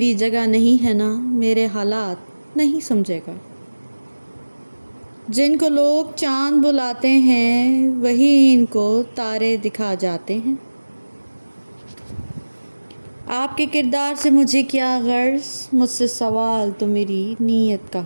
جگہ نہیں ہے نا میرے حالات نہیں سمجھے گا۔ جن کو لوگ چاند بلاتے ہیں وہی ان کو تارے دکھا جاتے ہیں۔ آپ کے کردار سے مجھے کیا غرض، مجھ سے سوال تو میری نیت کا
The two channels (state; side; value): inverted; both; correlation -1.00